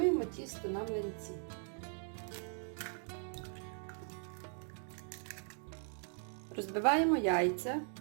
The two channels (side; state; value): left; silent; 52 dB below the other